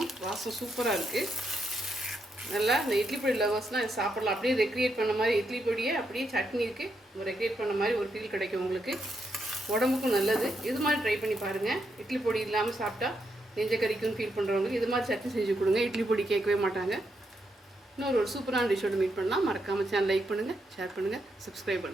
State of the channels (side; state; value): both; normal; correlation 0.80